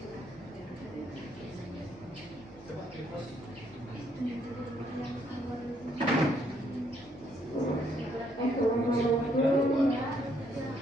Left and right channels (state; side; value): normal; both; correlation 0.71